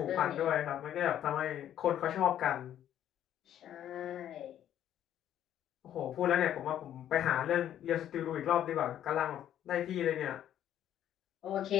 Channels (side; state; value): right; quieter; 10.9 dB